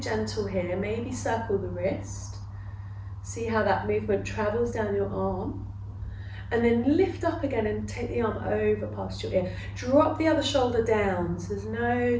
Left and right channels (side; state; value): both; identical; correlation 1.00